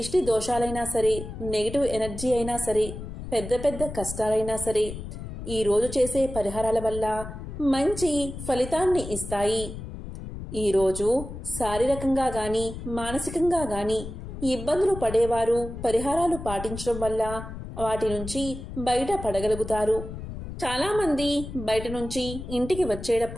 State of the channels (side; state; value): left; noise; rumble, 9 dB below the sound